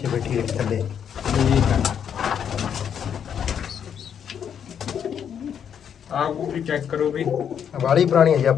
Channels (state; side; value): quieter; right; 8.3 dB